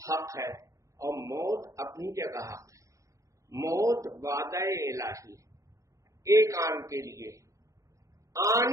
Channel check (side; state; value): left; late; 0.15 ms